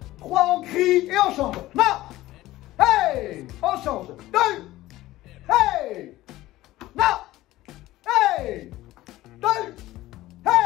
3, on crie et on change. Non. Hey, on change. 2. Hey. Non. Hey. 2.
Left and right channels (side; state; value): right; quieter; 16.5 dB